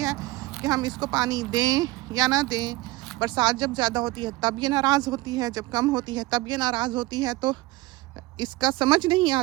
कि हम इसको पानी दें या ना दें। बरसात जब ज़्यादा होती है तब ये नाराज़ होती है, जब कम होती है तब ये नाराज़ होती है। तो इसका समझ नहीं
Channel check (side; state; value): left; quieter; 19.9 dB